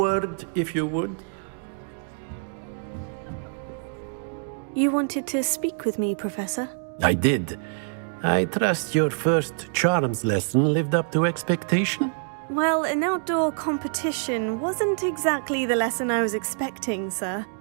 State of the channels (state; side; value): silent; left; 56 dB below the other